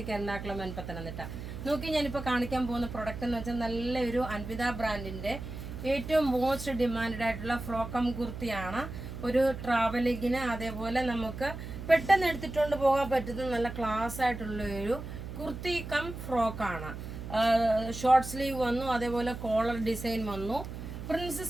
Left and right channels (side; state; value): right; noise; hum, 9 dB below the sound